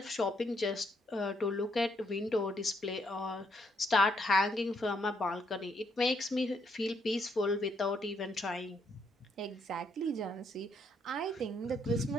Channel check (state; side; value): normal; both; correlation 0.73